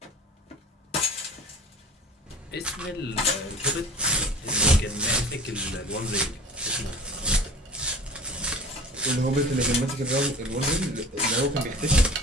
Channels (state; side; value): normal; both; correlation 0.40